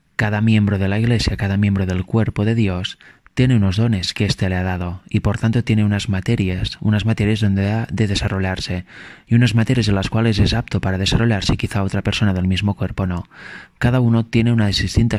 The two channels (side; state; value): both; identical; correlation 1.00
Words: cada miembro de la Iglesia, cada miembro del cuerpo de Dios, tiene unos dones que éste le ha dado y por tanto tiene unas materias donde ha de desarrollarse y unas materias en las cuales es apto para desarrollarse y quizá otra persona del mismo cuerpo no. Cada uno tiene unas